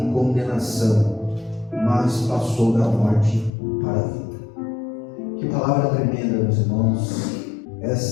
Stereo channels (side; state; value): right; drops out; at 3.5 s